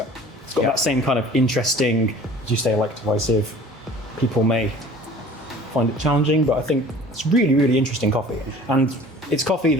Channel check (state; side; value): normal; both; correlation 0.46